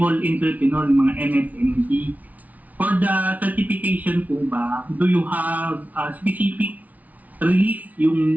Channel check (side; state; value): left; late; 0.073 ms